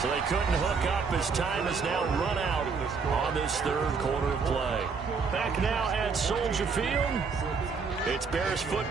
So they couldn't hook up as time is now run out on this 3rd quarter of play. Back now at Soldier Field. It's Bears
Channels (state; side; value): quieter; left; 5.2 dB